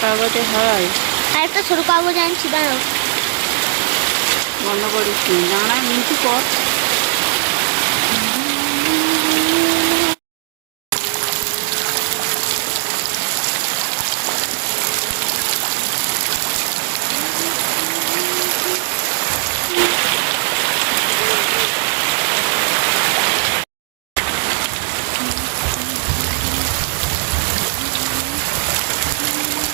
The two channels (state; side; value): silent; left; digital silence